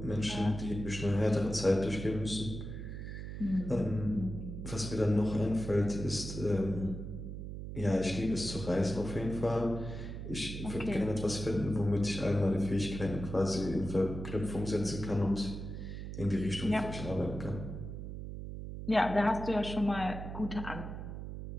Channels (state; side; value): noise; right; hum, 7 dB below the sound